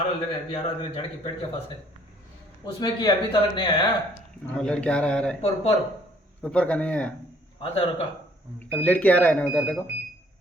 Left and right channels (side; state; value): both; normal; correlation 0.61